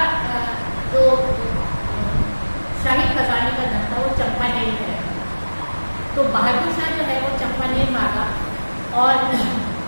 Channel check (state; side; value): inverted; both; correlation -1.00